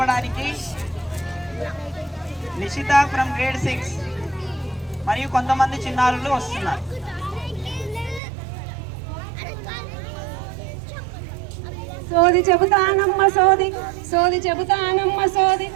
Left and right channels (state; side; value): drops out; left; at 8.2 s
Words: నిషిత ఫ్రమ్ గ్రేడ్ 6 మరియు కొంతమంది చిన్నారులు వస్తున్నారు. సోది చెబుతానమ్మ సోది, సోది చెబుతానమ్మ సోది,